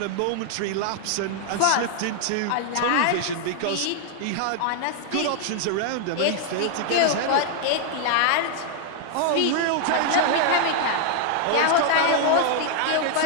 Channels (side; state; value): both; different; correlation 0.00